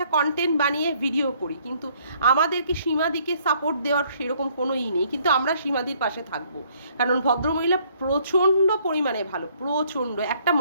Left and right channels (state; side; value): inverted; both; correlation -0.64